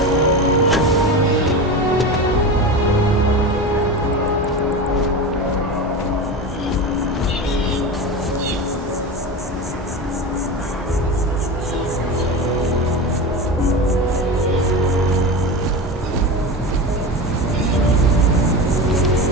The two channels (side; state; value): both; normal; correlation 0.25